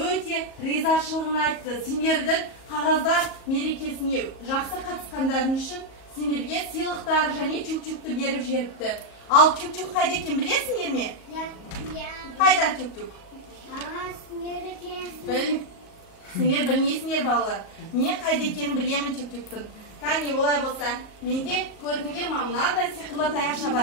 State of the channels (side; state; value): right; late; 37 ms